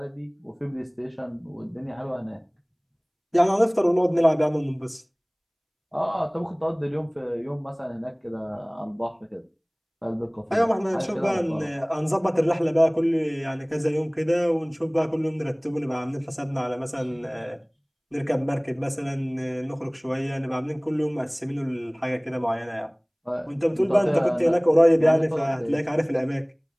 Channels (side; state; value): both; identical; correlation 1.00